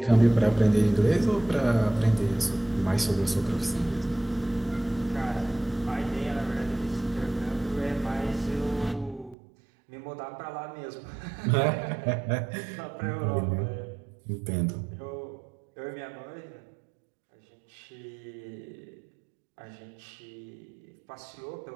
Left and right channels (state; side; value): drops out; left; at 9.3 s